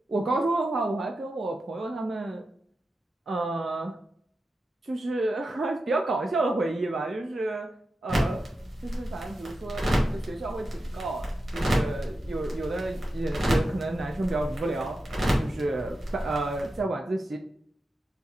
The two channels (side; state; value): both; normal; correlation 0.90